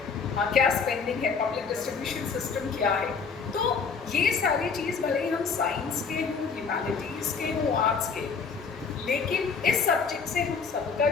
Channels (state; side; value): quieter; right; 5.4 dB